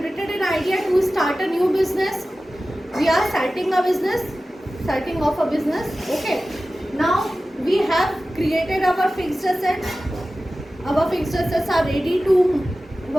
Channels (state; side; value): normal; both; correlation 0.95